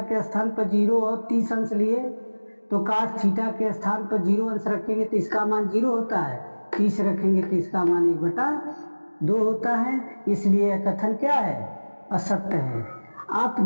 के स्थान पर 0 और 30 अंश लिए तो कास थीटा के स्थान पर 0 अंश रखेंगे तो इसका मान 0 होता है। 30 रखेंगे तो इसका मान 1/2 होता है। इसलिए कथन क्या है, असत्य है।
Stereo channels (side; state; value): both; inverted; correlation -1.00